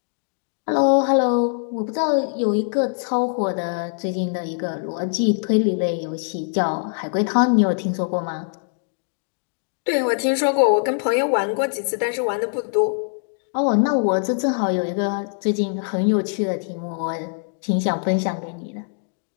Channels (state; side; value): silent; right; 59 dB below the other